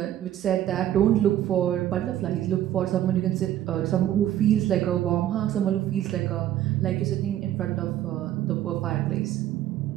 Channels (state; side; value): quieter; left; 12.2 dB